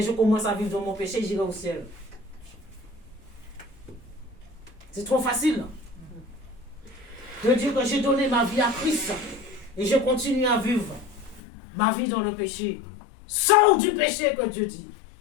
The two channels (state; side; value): drops out; right; at 11.4 s